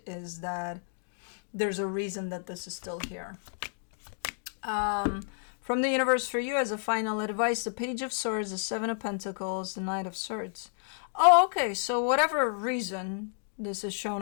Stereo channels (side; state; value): right; silent; digital silence